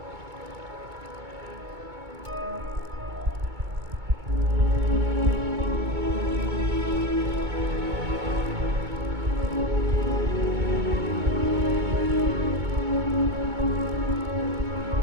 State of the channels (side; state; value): left; late; 2.2 ms